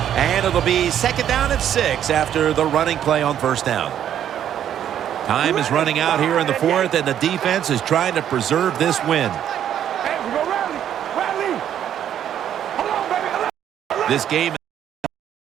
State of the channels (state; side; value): quieter; left; 10.1 dB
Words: And it'll be second down at 6 after the running play on first down. Time is running out here in the 4th, and the defense is trying to preserve this win. This game